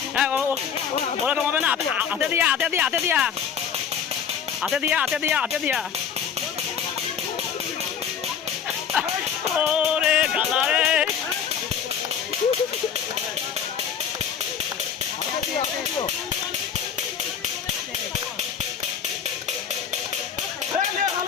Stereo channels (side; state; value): right; quieter; 7.6 dB